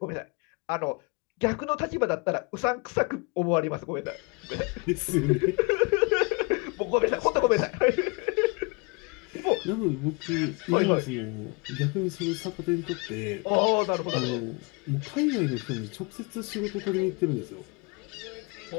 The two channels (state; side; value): quieter; right; 31.0 dB